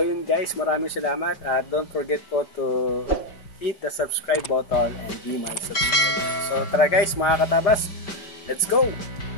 yun guys, maraming salamat at don't forget po to hit the subscribe button and be my subscriber. So tara guys mga katabas, let's go!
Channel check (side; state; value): right; late; 5.2 ms